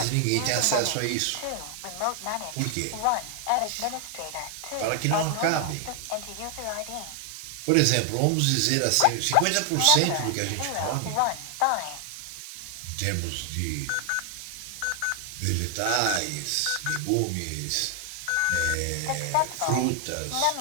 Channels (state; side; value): different; both; correlation 0.00